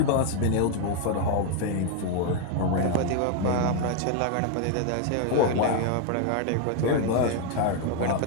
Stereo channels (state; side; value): different; both; correlation 0.01